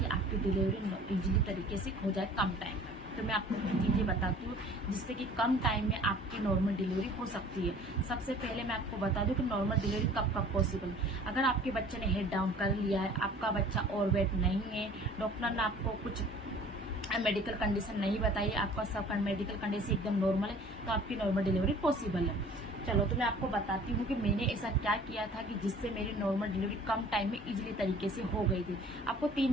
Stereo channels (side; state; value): both; normal; correlation 0.49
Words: आपकी डिलीवरी इजीली तरीके से हो जाए कम टाइम में। तो मैं आपको कुछ चीज़ें बताती हूँ जिससे कि कम टाइम में आपकी नॉर्मल डिलीवरी हो सकती है। सबसे पहले मैं आपको बता दूँ कि नॉर्मल डिलीवरी कब कब पॉसिबल है। अगर आपके बच्चे ने हेड डाउन कर लिया है, आपका बच्चा ओवरवेट नहीं है, डॉक्टर ने आपको कुछ मेडिकल कंडीशन नहीं बताई, आपका सब मेडिकल कंडीशन एकदम नॉर्मल है, तो आपकी नॉर्मल डिलीवरी पॉसिबल है। चलो तो मैं आपको बताती हूँ कि मैंने ऐसा क्या किया था कि जिससे मेरी नॉर्मल डिलीवरी कम टाइम में इजीली तरीके से हो गई थी। आपको 3